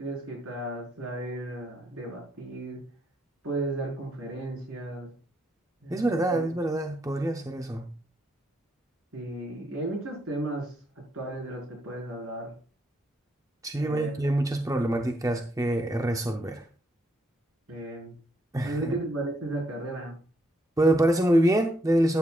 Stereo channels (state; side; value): normal; both; correlation 0.76